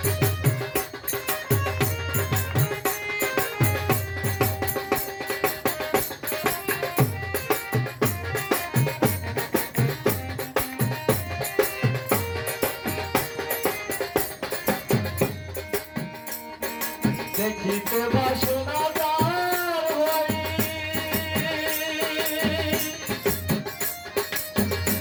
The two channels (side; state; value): both; identical; correlation 1.00